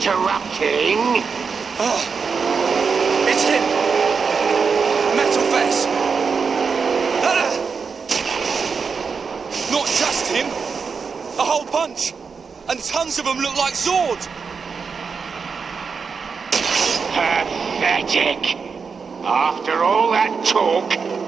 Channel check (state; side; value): quieter; left; 5.5 dB